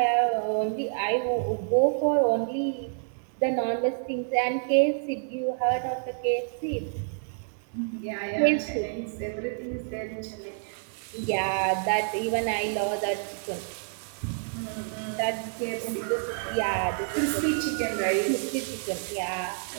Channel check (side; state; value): left; silent; digital silence